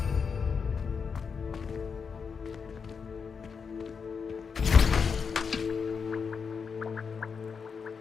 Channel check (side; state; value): right; quieter; 5.9 dB